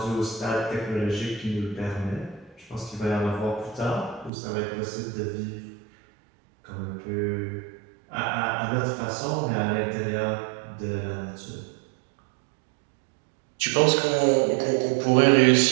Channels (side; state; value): left; drops out; at 4.3 s